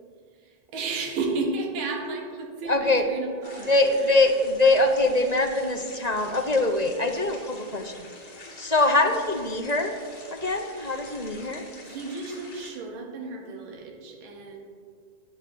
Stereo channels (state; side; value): late; left; 1.9 ms